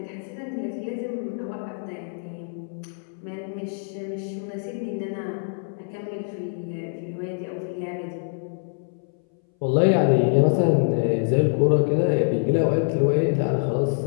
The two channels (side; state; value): right; silent; 61 dB below the other